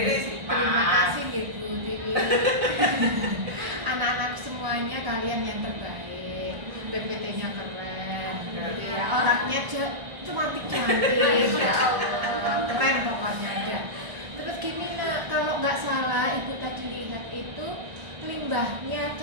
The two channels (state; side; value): late; left; 1.4 ms